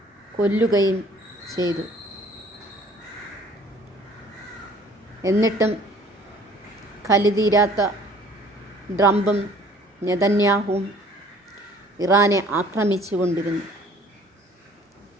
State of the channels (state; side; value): normal; both; correlation 0.54